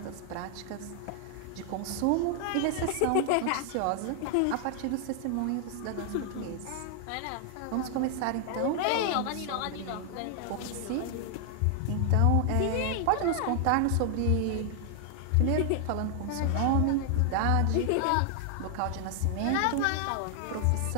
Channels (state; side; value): different; both; correlation 0.00